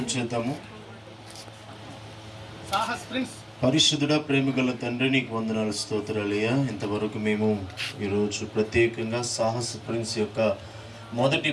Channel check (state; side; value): identical; both; correlation 1.00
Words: చేద్దాము. పరిశుద్ధుడ, ప్రేమగల తండ్రి, నీకు వందనాలు, స్తోత్రాలయ్యా. ఇంతవరకు మేము ఈరోజు ప్రత్యేకంగా సాహస్ ప్రిన్స్ యొక్క మొదటి